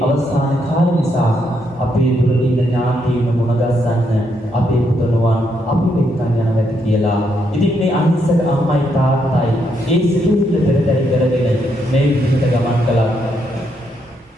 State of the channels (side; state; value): both; normal; correlation 0.77